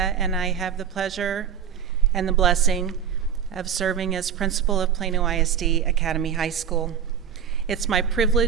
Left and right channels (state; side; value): quieter; left; 8.3 dB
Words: I have the pleasure and the blessing of serving as principal of Plano ISD Academy High School. It's my